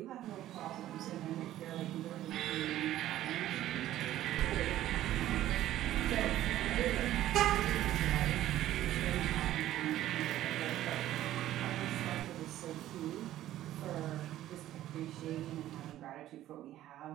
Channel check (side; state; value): left; quieter; 13.6 dB